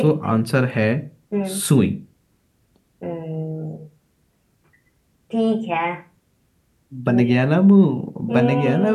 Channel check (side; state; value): both; identical; correlation 1.00